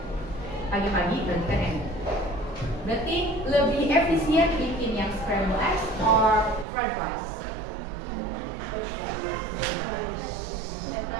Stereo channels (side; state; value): left; drops out; at 6.7 s